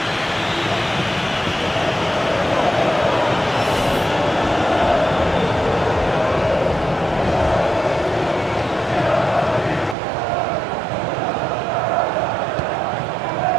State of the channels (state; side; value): drops out; left; at 10.0 s